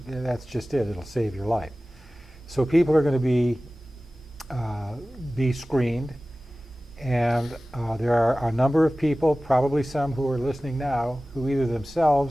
that's just it. It'll save your life. So people are going to be screened, and there are a number of people, probably some who are listening now, who either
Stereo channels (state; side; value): normal; both; correlation 0.97